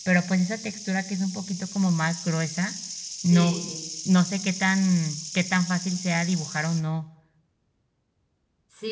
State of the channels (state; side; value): identical; both; correlation 1.00